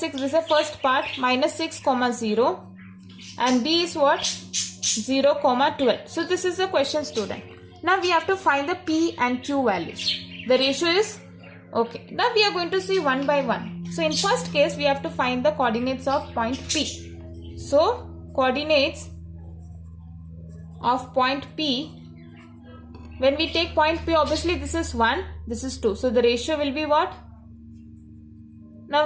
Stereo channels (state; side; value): identical; both; correlation 1.00